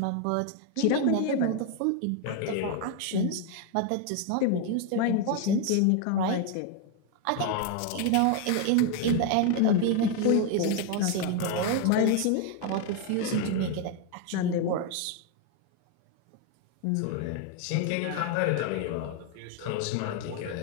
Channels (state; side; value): different; both; correlation 0.01